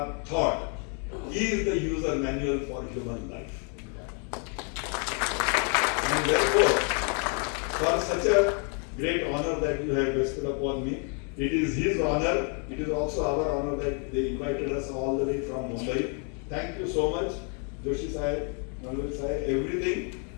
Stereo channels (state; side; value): quieter; right; 39.7 dB